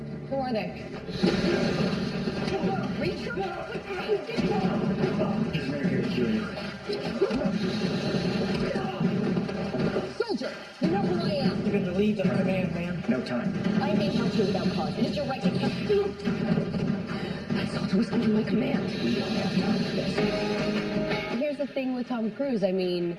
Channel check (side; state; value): both; identical; correlation 1.00